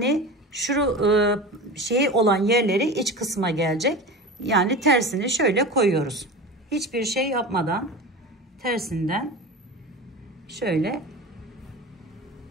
şu şey olan yerleri iç kısma gelecek. Yani tersini şöyle koyuyoruz. Hiçbir şey yapmadan tersinden şöyle.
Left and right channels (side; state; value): both; normal; correlation 0.31